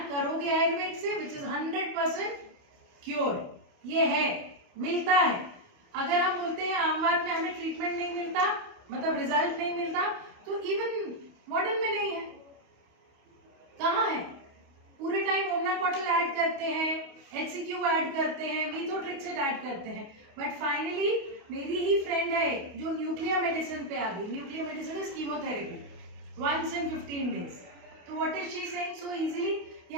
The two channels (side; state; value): left; late; 28 ms